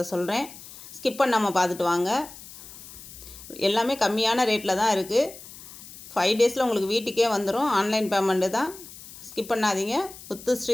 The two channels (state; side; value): noise; left; hiss, 16 dB below the sound